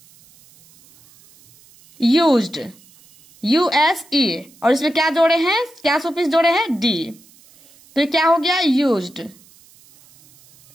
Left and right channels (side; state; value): right; noise; hiss, 28 dB below the sound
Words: यूज्ड, यूएसई, और इसमें क्या जोड़े हैं? क्या सुफिक्स जोड़े हैं? डी। तो ये क्या हो गया? यूज्ड।